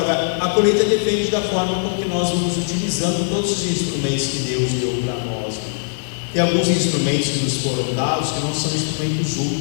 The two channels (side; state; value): right; silent; digital silence